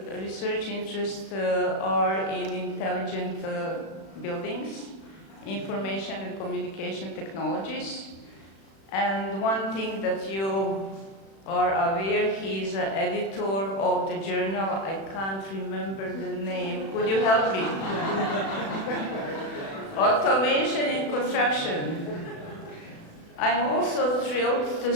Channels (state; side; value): late; right; 36 ms